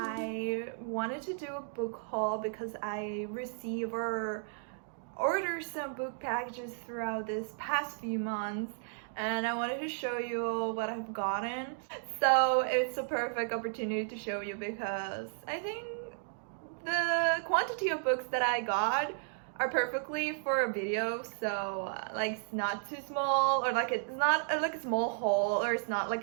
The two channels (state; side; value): silent; left; digital silence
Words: wanted to do a book haul because I receive or order some book packages throughout this past few months, and I wanted to show you all what I've gotten. So it's a perfect opportunity to show you because I think the quantity of books that I got are perfectly for a video. So like it's not too small, or like it's not like a small haul, or it's not like